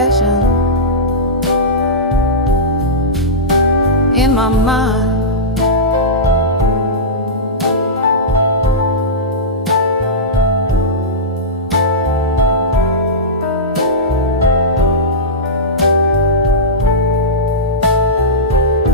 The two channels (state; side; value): normal; both; correlation -0.14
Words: in my mind.